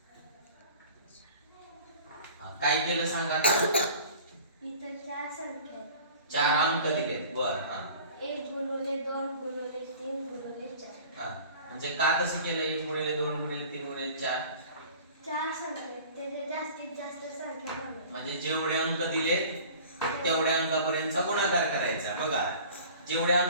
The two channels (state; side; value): inverted; both; correlation -0.44